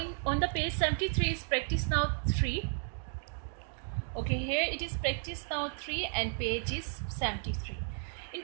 on the page 73 is practice now 3. Okay, here it is practice now 3 and page is 73. In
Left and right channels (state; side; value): silent; left; 55 dB below the other